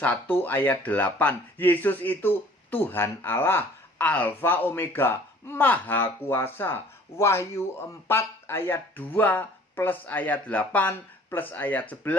ayat 8. Yesus itu Tuhan Allah. Alfa Omega. Maha kuasa. Wahyu 4 ayat 2 plus ayat 8 plus ayat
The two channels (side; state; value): both; normal; correlation 0.53